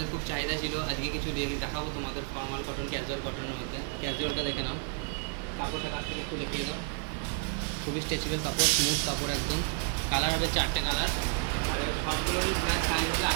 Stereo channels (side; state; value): left; quieter; 35.9 dB